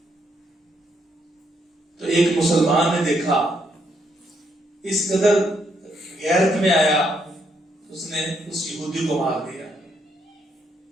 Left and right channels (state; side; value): normal; both; correlation 0.75